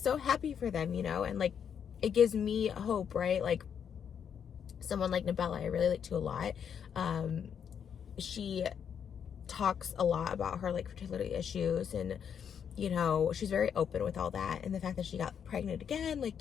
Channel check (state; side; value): quieter; right; 7.8 dB